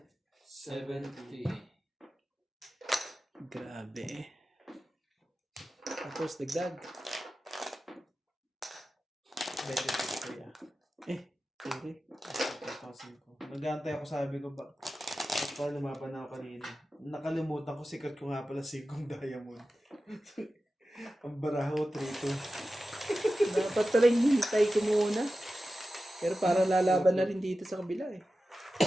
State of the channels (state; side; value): normal; both; correlation 0.94